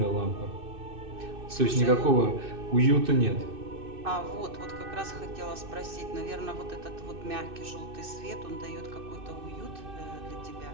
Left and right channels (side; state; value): left; late; 2.6 ms